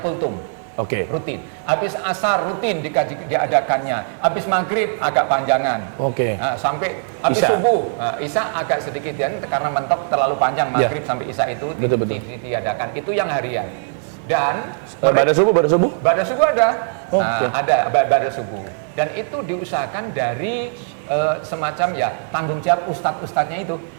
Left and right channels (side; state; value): left; silent; 61 dB below the other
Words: kultum. Rutin. Habis asar rutin diadakannya. Habis maghrib agak panjangan. Nah, sampai habis subuh, isya agak sedikit karena mentok terlalu panjang maghrib sampai isya itu diadakan. Itu yang harian. Dan pada subuh ada. Ada pada subuh. Dan itu diusahakan dari semacam tanggung jawab ustadz-ustadznya itu.